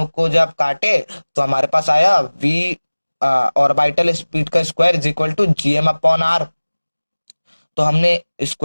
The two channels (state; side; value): inverted; both; correlation -1.00